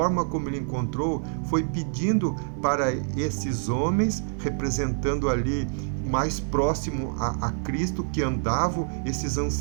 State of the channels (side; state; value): left; silent; 61 dB below the other